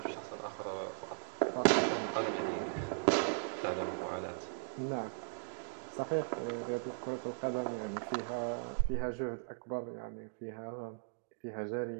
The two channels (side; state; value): left; silent; digital silence